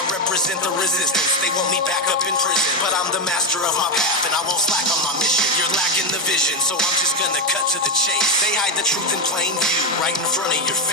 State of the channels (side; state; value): both; normal; correlation 0.10